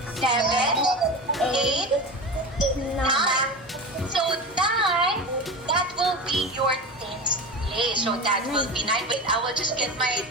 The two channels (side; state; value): both; normal; correlation 0.26